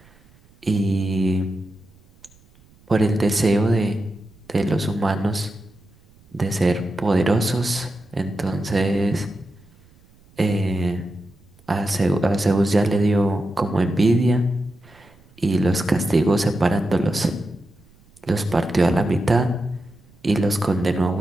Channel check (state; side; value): noise; right; rumble, 29 dB below the sound